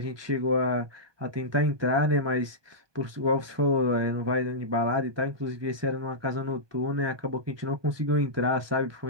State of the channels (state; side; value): late; left; 1.2 ms